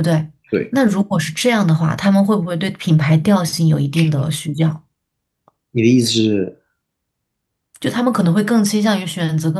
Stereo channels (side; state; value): both; identical; correlation 1.00